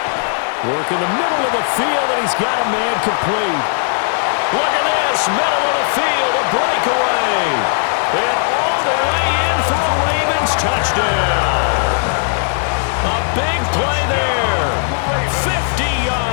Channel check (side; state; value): right; silent; digital silence